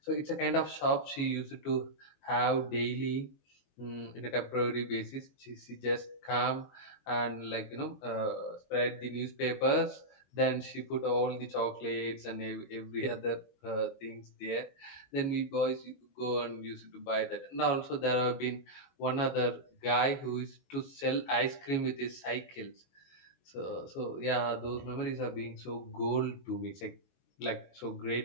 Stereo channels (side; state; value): right; late; 22 ms